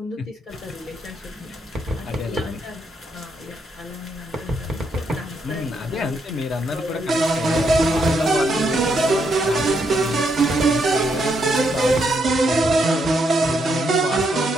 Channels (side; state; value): both; normal; correlation 0.78